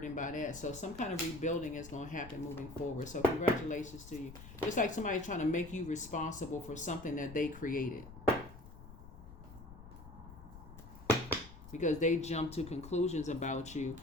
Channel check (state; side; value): noise; left; rumble, 15 dB below the sound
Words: by that. So some kind of rebuilding is going to happen moving forward. So congratulations to you. It's like somebody trying to make you responsible for something that they created. Because they jump to conclusions about you.